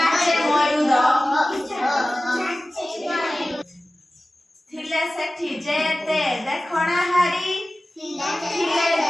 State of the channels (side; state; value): both; normal; correlation 0.96